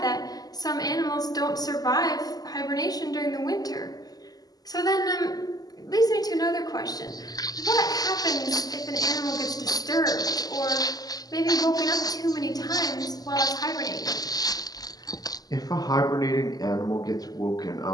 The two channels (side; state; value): right; late; 0.18 ms